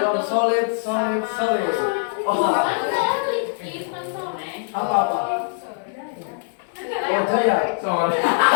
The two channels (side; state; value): right; silent; digital silence